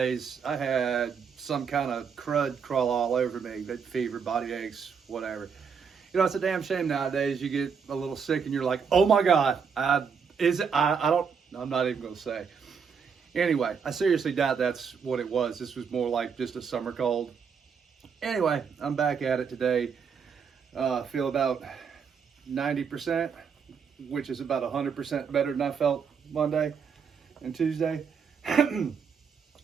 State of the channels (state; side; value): quieter; left; 6.4 dB